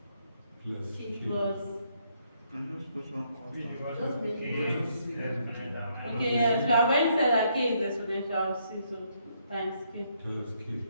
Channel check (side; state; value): both; inverted; correlation -0.73